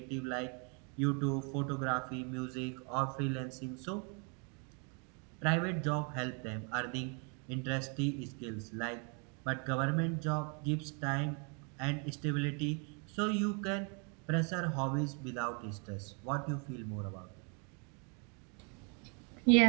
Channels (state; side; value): quieter; left; 36.5 dB